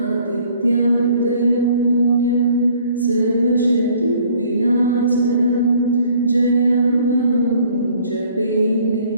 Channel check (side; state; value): both; inverted; correlation -0.58